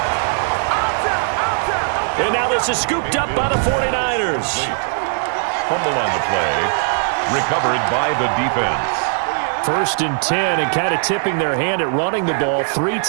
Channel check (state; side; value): silent; left; 63 dB below the other